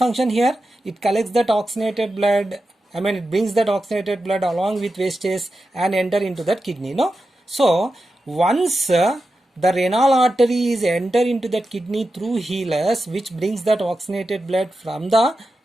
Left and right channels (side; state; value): both; normal; correlation 0.91